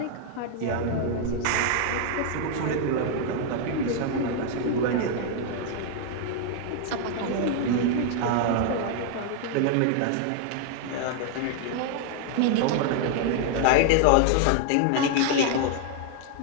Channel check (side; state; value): both; different; correlation 0.00